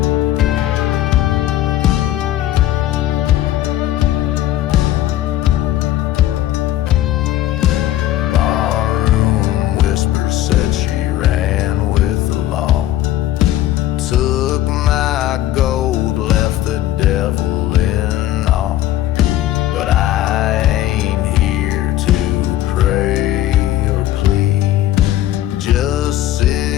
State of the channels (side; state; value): right; quieter; 13.4 dB